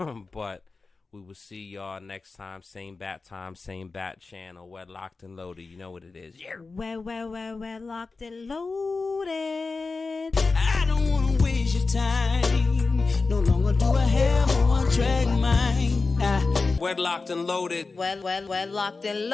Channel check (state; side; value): quieter; right; 4.0 dB